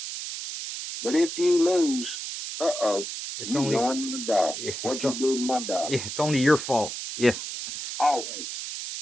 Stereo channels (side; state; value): right; noise; hiss, 7 dB below the sound